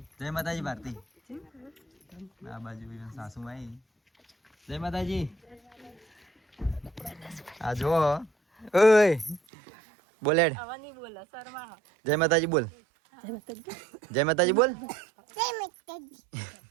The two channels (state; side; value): drops out; left; at 9.4 s